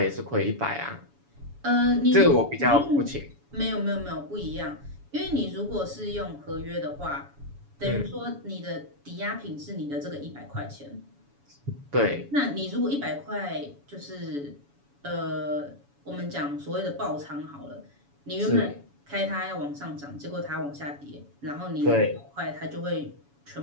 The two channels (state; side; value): late; left; 7.1 ms